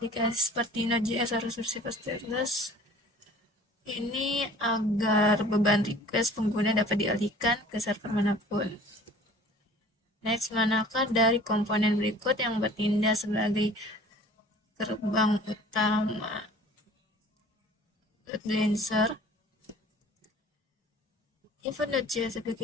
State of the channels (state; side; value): normal; both; correlation 0.48